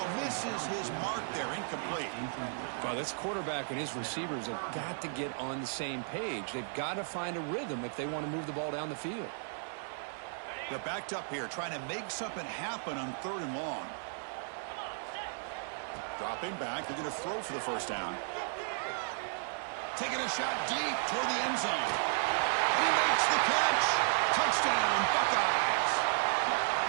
misses his mark there. Incomplete. Well, this quarterback and his receivers have got to get on the same page. They've got to find a rhythm if they want to move the ball down the field. They're backed up here, trying to make something happen on third and long. Dropping back. They're going to throw for the first down. Taking a shot deep toward the end zone. And he makes the catch. Touchdown, Buckeyes.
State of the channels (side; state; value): left; silent; 55 dB below the other